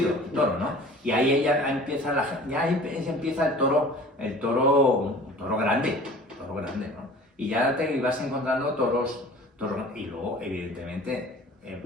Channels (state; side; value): normal; both; correlation 0.44